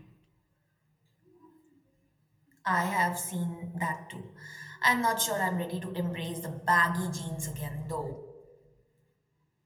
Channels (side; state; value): both; identical; correlation 1.00